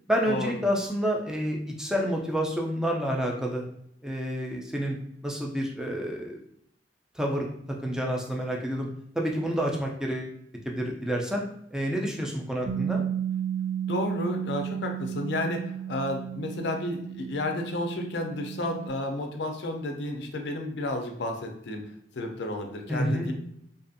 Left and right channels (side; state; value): both; normal; correlation 0.60